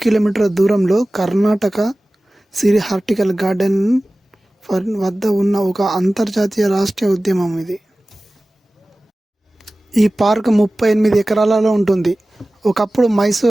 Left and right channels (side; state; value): both; normal; correlation 0.97